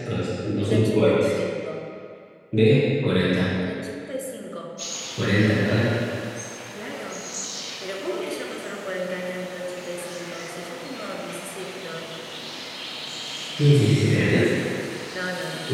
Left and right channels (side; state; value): both; identical; correlation 1.00